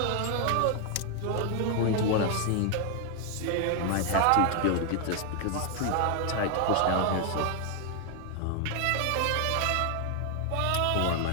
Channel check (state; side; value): different; both; correlation 0.00